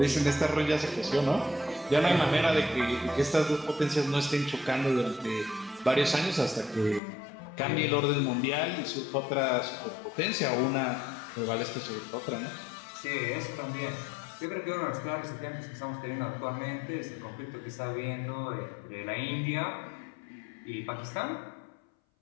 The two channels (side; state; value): right; drops out; at 7.0 s